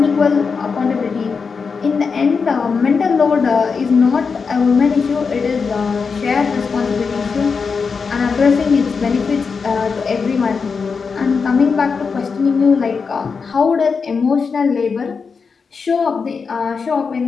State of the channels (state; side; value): quieter; right; 5.3 dB